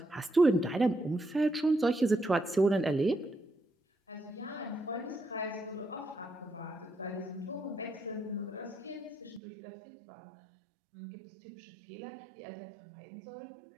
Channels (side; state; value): left; drops out; at 9.4 s